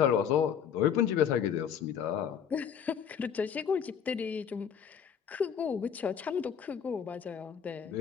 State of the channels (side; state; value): right; quieter; 7.9 dB